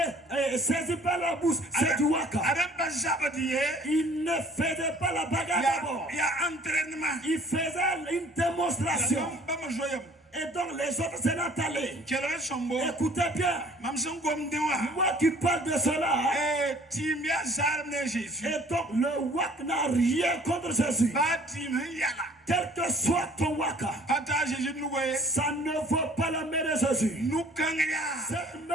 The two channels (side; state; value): both; normal; correlation 0.54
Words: et saisi par la bouche, c'est du waka. Il ne faisait pas la bagarre d'abord. Il faisait une démonstration. Et donc les autres s'en sont allés. Écoutez bien. Moi qui parle de cela. Et donc le wak n'a rien contre Jésus. Quel que soit ton waka, ça ne vaut pas la main de Jésus. Cette